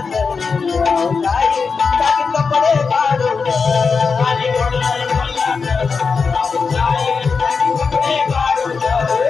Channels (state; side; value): quieter; right; 5.1 dB